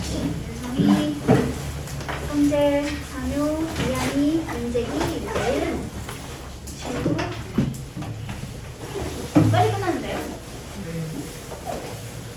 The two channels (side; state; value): both; identical; correlation 1.00